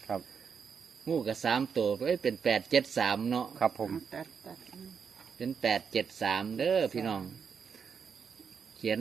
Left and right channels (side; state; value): left; quieter; 6.5 dB